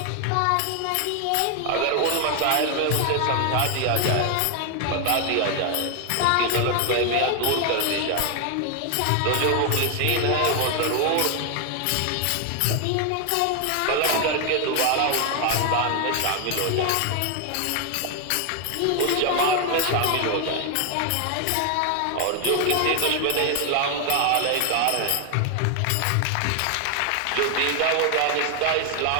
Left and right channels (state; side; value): different; both; correlation 0.00